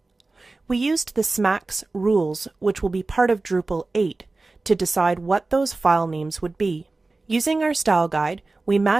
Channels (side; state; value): left; quieter; 3.4 dB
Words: We used the SMAX rules, which will be part of Drupal 8, to decide what those file names would be. Using our style guide, we